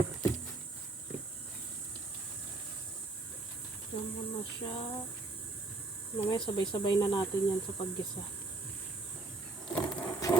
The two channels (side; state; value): left; quieter; 3.2 dB